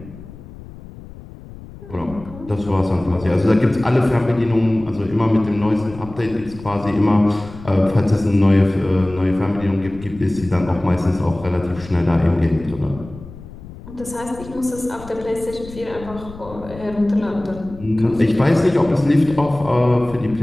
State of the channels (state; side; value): noise; left; rumble, 16 dB below the sound